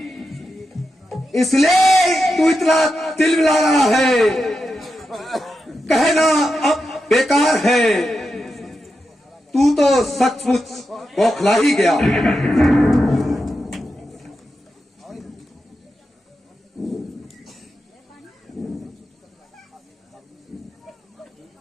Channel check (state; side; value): normal; both; correlation 0.88